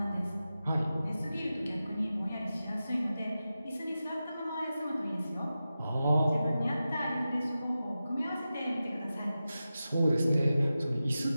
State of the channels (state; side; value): inverted; both; correlation -0.93